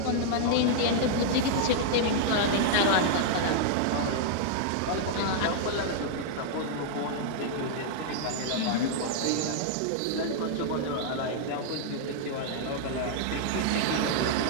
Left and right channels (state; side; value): different; both; correlation -0.01